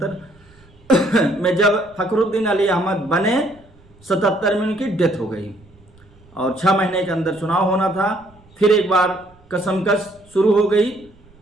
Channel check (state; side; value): noise; right; rumble, 28 dB below the sound